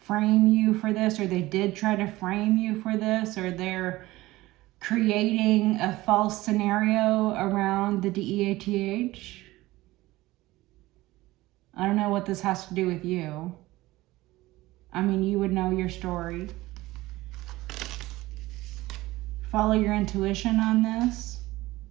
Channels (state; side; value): quieter; left; 18.4 dB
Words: frame you for this, or they did try to frame you for this, or they're creating a false scenario around the DEATH. I don't know what this has to do with you. I mean, you would know your story. Follow your intuition on this.